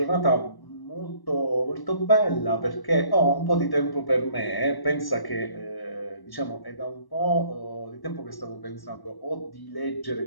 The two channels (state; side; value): late; right; 1.1 ms